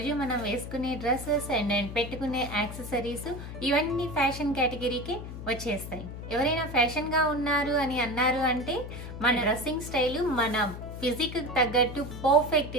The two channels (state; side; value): noise; left; hum, 9 dB below the sound